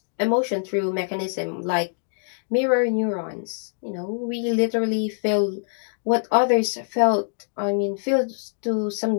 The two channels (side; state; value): right; silent; digital silence